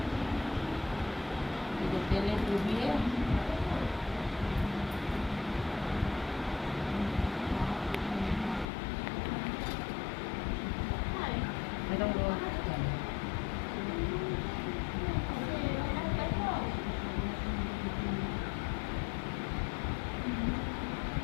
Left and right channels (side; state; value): right; drops out; at 8.7 s